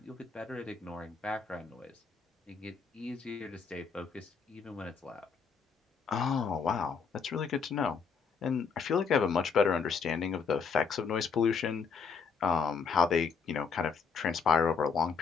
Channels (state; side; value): quieter; right; 5.7 dB